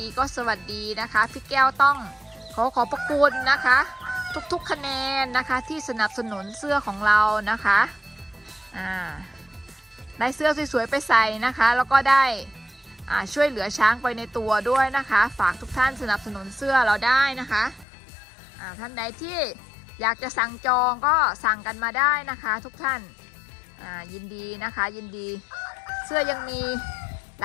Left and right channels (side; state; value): right; drops out; at 17.9 s